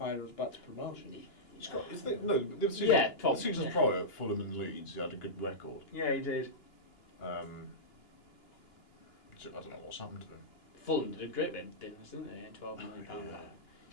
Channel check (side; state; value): right; late; 2.9 ms